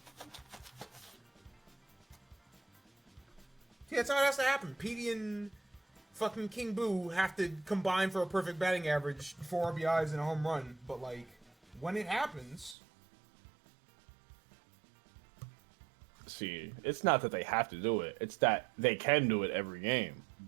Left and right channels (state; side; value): drops out; left; at 12.8 s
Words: Yeah, that's how it has to happen. Petey and fucking King Boo have to combine for a perfect batting average, 4 RBIs and a home run. But, like, when it happens... See, it's not that they have to do it. It's that they can do it every game.